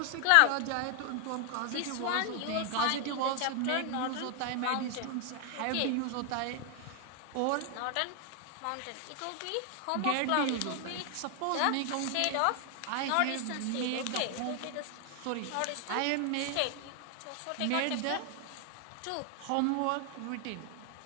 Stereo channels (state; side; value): different; both; correlation 0.00